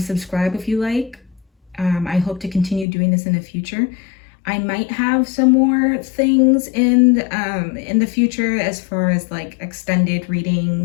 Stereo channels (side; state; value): right; drops out; at 2.9 s